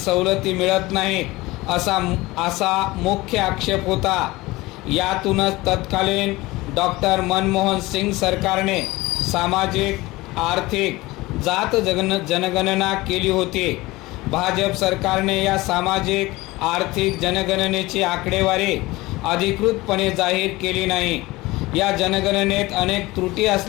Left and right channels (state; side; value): quieter; right; 20.4 dB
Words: मिळत नाहीत असा मुख्य आक्षेप होता. यातूनच तत्कालीन डॉक्टर मनमोहन सिंग सरकारने सामाजिक आर्थिक जात जनगणना केली होती. भाजप सरकारने या सामाजिक आर्थिक जनगणनेची आकडेवारी अधिकृतपणे जाहीर केली नाही. या जनगणनेत अनेक त्रुटी